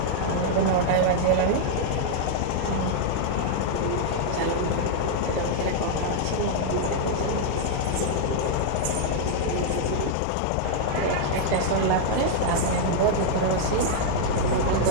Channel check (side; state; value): both; different; correlation -0.01